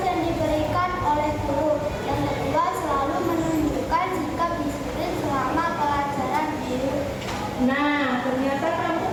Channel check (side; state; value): both; identical; correlation 1.00